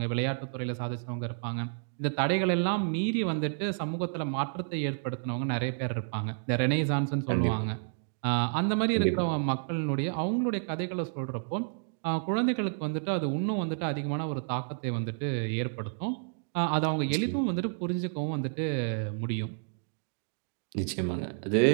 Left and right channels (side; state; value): left; silent; digital silence